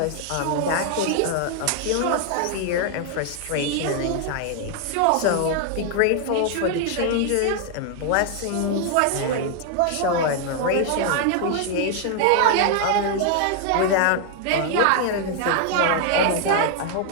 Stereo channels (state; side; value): different; both; correlation 0.00